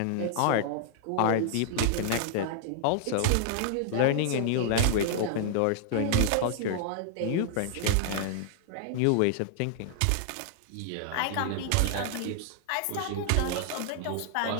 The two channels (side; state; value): both; different; correlation -0.01